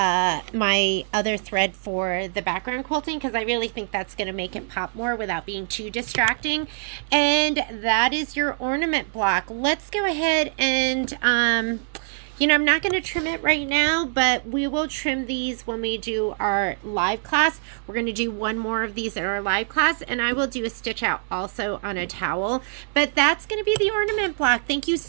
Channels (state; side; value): silent; left; digital silence